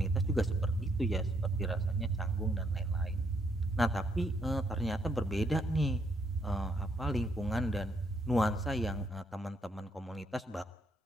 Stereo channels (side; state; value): both; normal; correlation 0.74